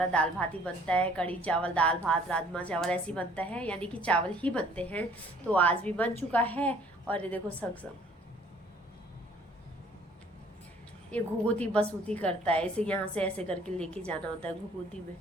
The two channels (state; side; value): normal; both; correlation 0.57